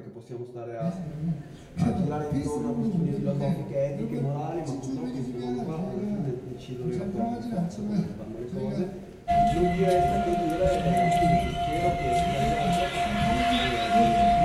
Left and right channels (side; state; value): both; identical; correlation 1.00